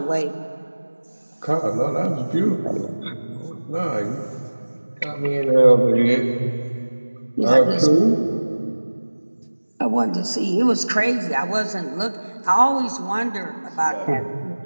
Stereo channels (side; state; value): both; inverted; correlation -1.00